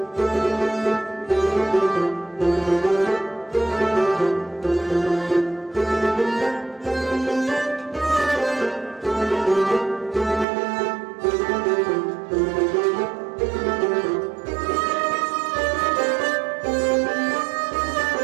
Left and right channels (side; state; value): left; drops out; at 10.5 s